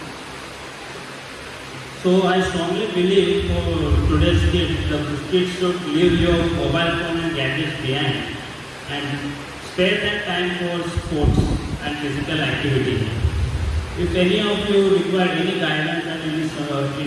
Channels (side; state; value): both; identical; correlation 1.00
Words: So I strongly believe for today's kids, the kids should leave your mobile phone and gadgets behind and spare that time for sports and physical activity. If any of you require any guidance and